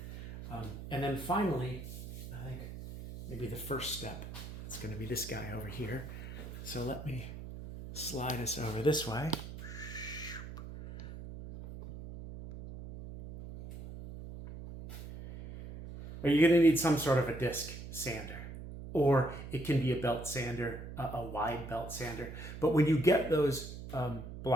And then finally, I think maybe the first step, it's going to be this guy over here. So let me slide us over this way. Or you're going to need some sort of a disc sander, or it can be a belt sander, a wide belt sander. But when you get those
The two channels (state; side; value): noise; right; hum, 11 dB below the sound